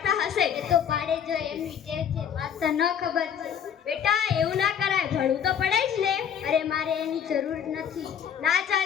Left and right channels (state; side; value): quieter; right; 8.4 dB